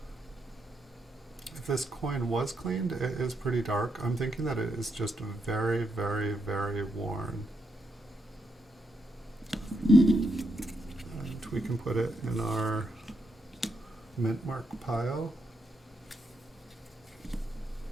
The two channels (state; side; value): normal; both; correlation 0.80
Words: If this coin was cleaned, it is pretty dark. I'm thinking that it is just very, very, very worn. And we can put it in our mint mark pile.